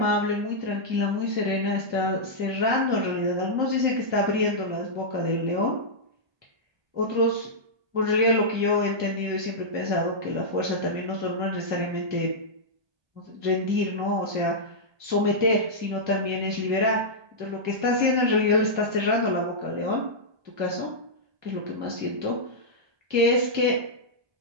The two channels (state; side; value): late; left; 1.2 ms